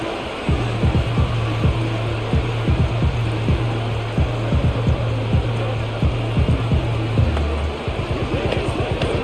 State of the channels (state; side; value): identical; both; correlation 1.00